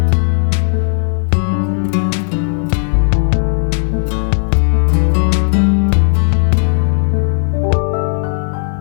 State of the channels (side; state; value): right; silent; digital silence